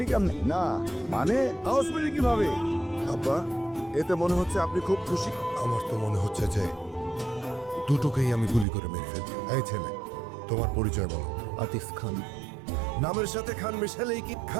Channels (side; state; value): left; drops out; at 8.7 s